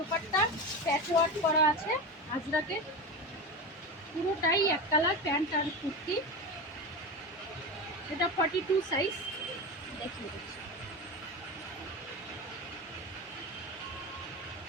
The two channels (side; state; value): both; normal; correlation 0.22